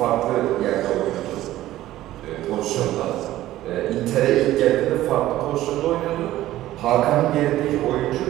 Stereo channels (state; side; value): quieter; left; 14.7 dB